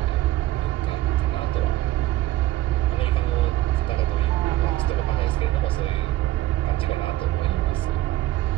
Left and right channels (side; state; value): left; quieter; 15.7 dB